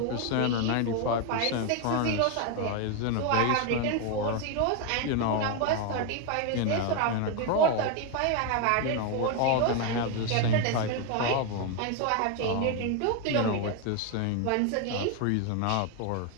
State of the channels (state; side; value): different; both; correlation 0.01